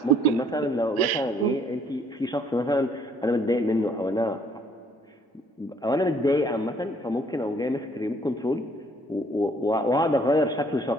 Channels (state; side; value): normal; both; correlation 0.63